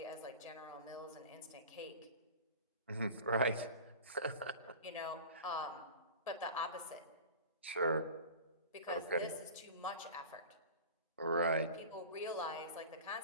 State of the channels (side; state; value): both; inverted; correlation -0.35